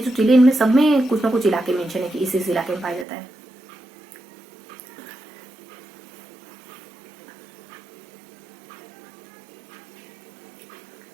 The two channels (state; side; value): drops out; left; at 3.1 s